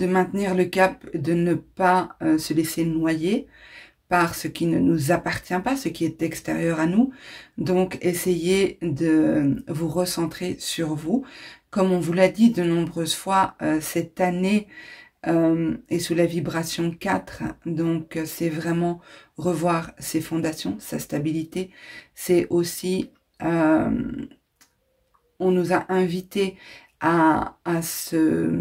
maintenir le cap, de ne pas se laisser noyer par ce qui ne nous appartient pas, ce qui est extérieur à nous. Donc, essayez de vous recentrer sur vous. Comme on vous l'a dit de nombreuses fois, cette année est sous la vibration 4. Donc, c'est vraiment revoir ses fondations, sa stabilité. C'est aussi, on nous a invités à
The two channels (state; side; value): identical; both; correlation 1.00